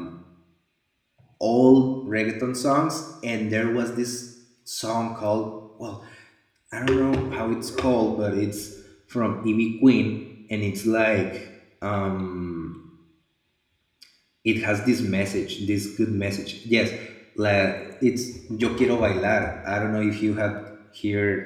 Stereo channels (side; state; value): both; identical; correlation 1.00